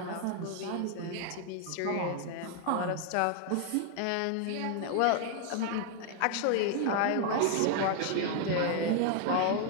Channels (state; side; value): different; both; correlation 0.00